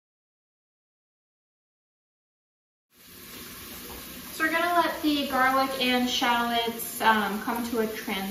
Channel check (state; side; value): identical; both; correlation 1.00